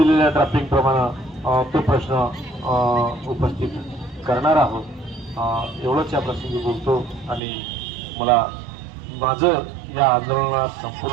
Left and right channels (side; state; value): left; drops out; at 7.4 s